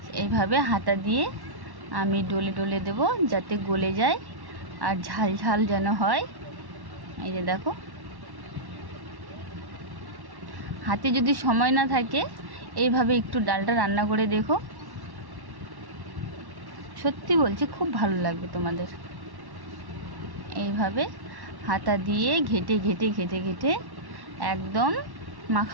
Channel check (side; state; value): left; late; 1.1 ms